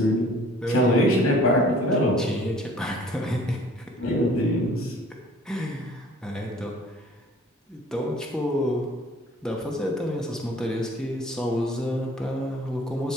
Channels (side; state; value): both; normal; correlation 0.52